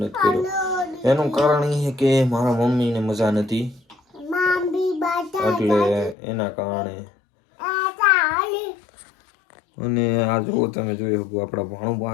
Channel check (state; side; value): drops out; right; at 6.2 s